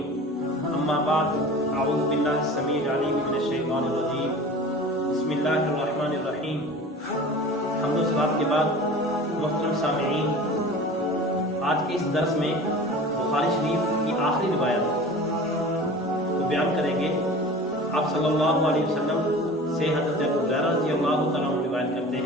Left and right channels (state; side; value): normal; both; correlation 0.39